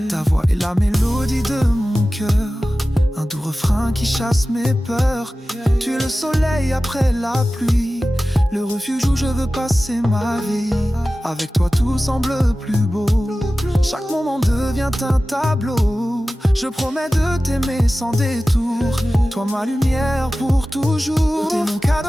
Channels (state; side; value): normal; both; correlation 0.96